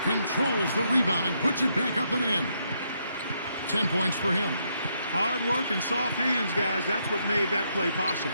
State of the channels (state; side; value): inverted; both; correlation -0.76